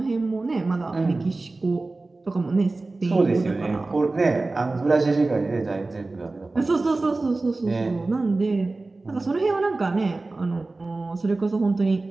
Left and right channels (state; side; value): quieter; left; 3.3 dB